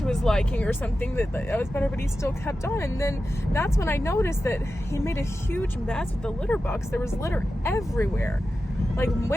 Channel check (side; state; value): both; normal; correlation 0.92